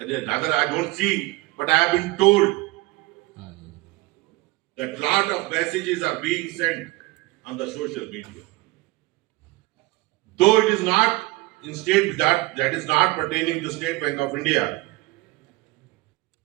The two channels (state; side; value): quieter; left; 21.4 dB